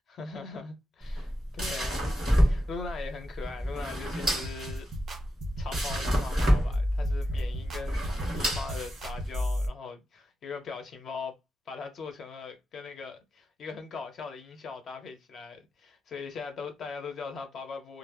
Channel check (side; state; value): both; normal; correlation 0.89